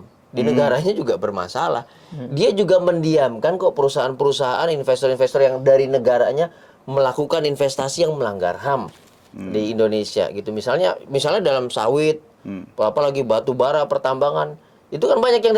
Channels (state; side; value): identical; both; correlation 1.00